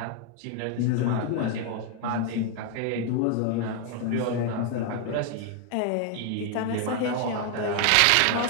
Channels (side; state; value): both; different; correlation 0.00